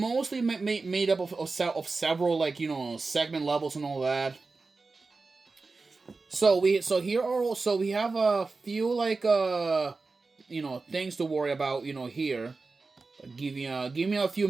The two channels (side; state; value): left; quieter; 3.9 dB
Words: made up of several like, segment levels and all that. So we have a few like things to worry about, here. Give me a few